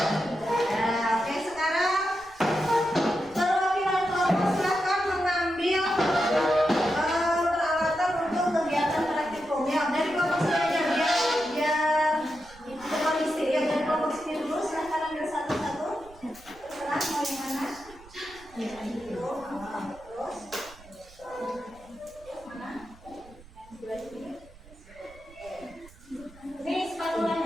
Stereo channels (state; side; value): noise; right; rumble, 23 dB below the sound